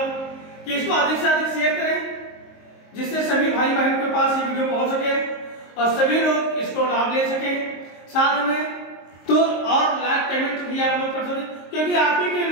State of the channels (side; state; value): right; late; 22 ms